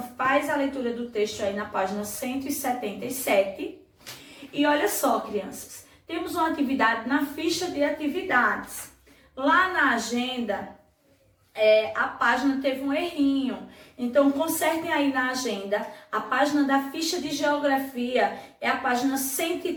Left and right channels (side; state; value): both; identical; correlation 1.00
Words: faz a leitura do texto aí na página 177. E olha só, crianças, temos uma atividade na ficha de atividades. Lá na agenda, a página teve um errinho. Então, consertem aí na agenda. A página da ficha de geografia é a página